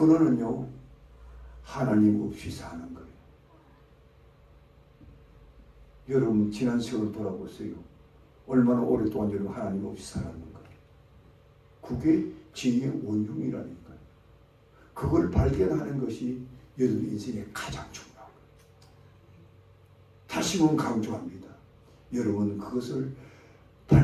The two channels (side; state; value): both; identical; correlation 1.00